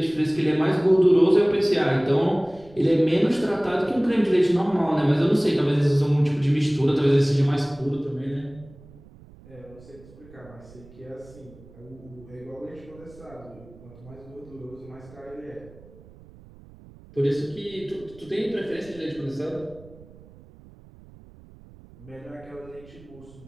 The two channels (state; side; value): noise; right; rumble, 22 dB below the sound